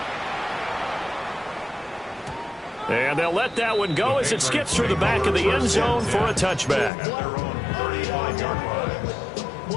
And they'll let that one go as it skips through the back of the end zone for a touchback. At their own 35-yard line.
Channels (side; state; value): right; drops out; at 6.9 s